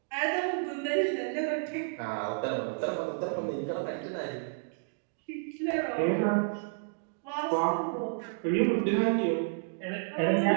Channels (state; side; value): silent; left; digital silence